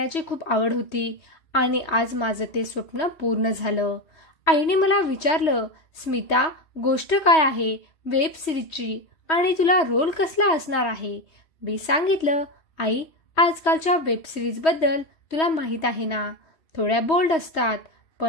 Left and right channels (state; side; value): late; right; 3.1 ms